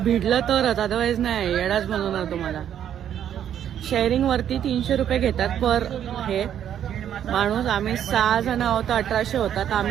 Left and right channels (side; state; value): left; quieter; 9.9 dB